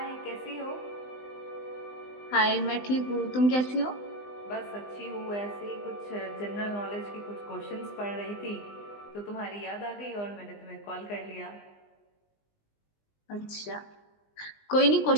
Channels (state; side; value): late; right; 20 ms